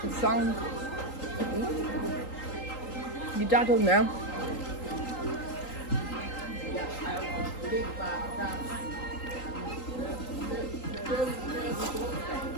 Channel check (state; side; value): late; right; 3.8 ms